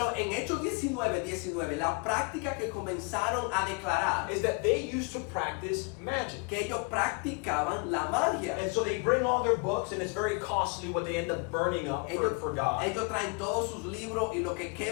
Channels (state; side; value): quieter; right; 32.4 dB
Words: en Hechos 19, la práctica que comenzaron a declarar is that they used to practice magic. que ellos practicaban la magia. And so they bring all their books, and it's very costly what they end up burning up for God. Ellos traen todos sus libros y lo que